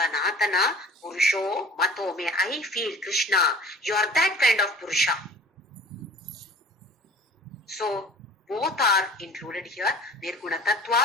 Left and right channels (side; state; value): both; normal; correlation 0.45